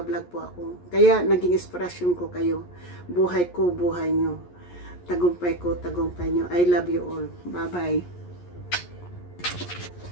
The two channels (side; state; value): right; late; 11 ms